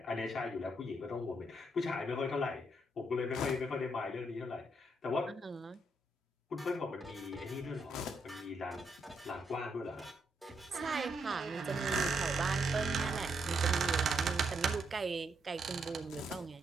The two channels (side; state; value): both; normal; correlation 0.77